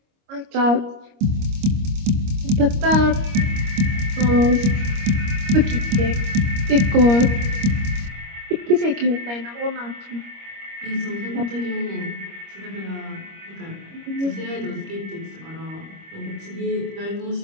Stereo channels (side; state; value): left; late; 25 ms